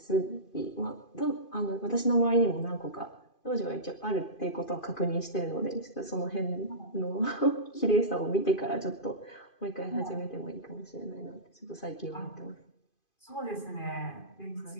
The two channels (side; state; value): right; late; 2.5 ms